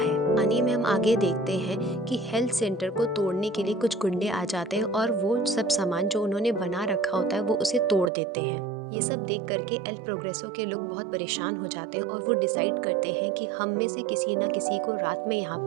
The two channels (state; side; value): drops out; left; at 8.1 s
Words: कहानी में हम आगे देखते हैं कि हेल्थ सेंटर को तोड़ने के लिए कुछ गुंडे आ जाते हैं और वो सब सामान जो उन्होंने बना रखा होता है वो उसे तोड़ देते हैं। ये सब देख करके एल प्रोग्रेसो के लोग बहुत परेशान हो जाते हैं और वो डिसाइड करते हैं कि हम में से किसी न किसी को रात में यहाँ